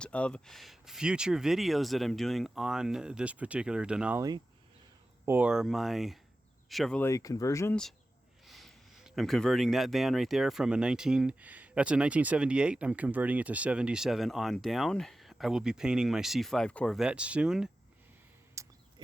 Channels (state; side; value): normal; both; correlation 0.94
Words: of future videos that I'm doing on this particular Denali or my Chevrolet conversions. I'm converting that van right there from that's a 1978. I'm converting it to 77 on down. I will be painting my C5 Corvette soon,